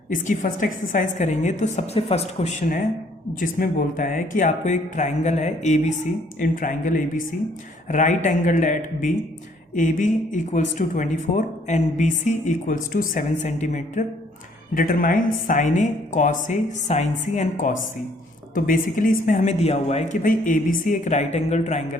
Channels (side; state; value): both; normal; correlation 0.63